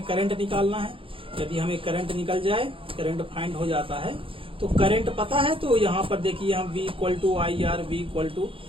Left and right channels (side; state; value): left; late; 0.26 ms